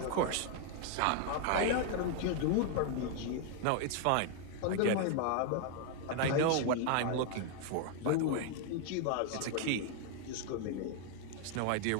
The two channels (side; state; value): both; different; correlation 0.00